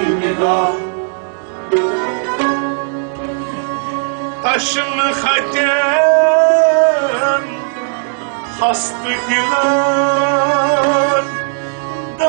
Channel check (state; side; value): silent; left; 60 dB below the other